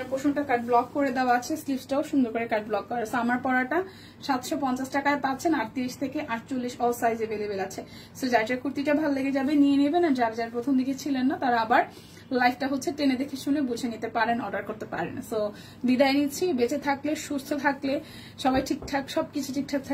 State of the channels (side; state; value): both; identical; correlation 1.00